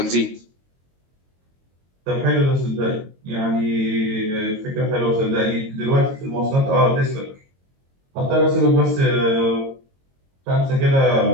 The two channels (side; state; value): left; late; 22 ms